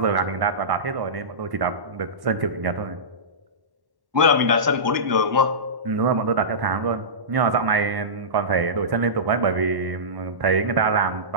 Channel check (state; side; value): late; left; 1.1 ms